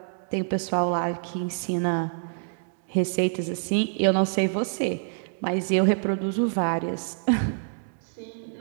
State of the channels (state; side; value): silent; left; 61 dB below the other